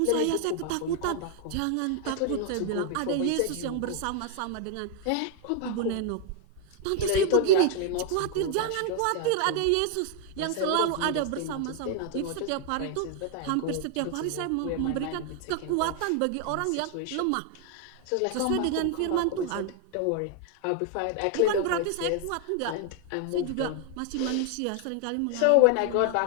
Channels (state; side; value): different; both; correlation 0.00